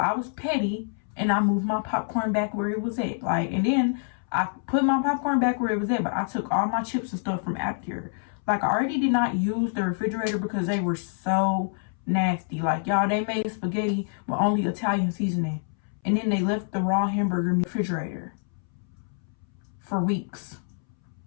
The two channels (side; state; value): right; silent; 60 dB below the other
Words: was petty and I moved my popcorn back where it was at. Like, and then I put my popcorn back where it was at, but I took all my chips and stuff from after. Like, I already did not use the refrigerator because they were so nasty. Like, y'all, they made spaghetti with only Italian seasoning. And then they left the raw hamburger in the refrigerator for weeks.